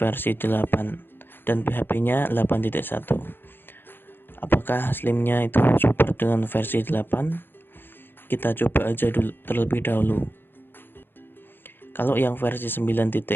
8 dan PHP-nya 8.1. Apakah Slim-nya itu support dengan versi 8? Kita coba aja dulu terlebih dahulu. Kalau yang versi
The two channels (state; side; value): late; right; 0.10 ms